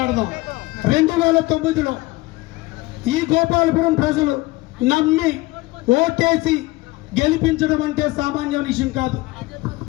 2009లో ఈ గోపాలపురం ప్రజలు నమ్మి ఓటేసి గెలిపించడం అంటే సామాన్య విషయం కాదు.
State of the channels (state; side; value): quieter; right; 20.7 dB